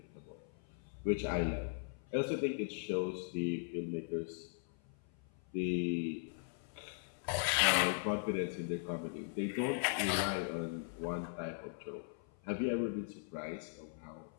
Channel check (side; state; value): right; silent; 52 dB below the other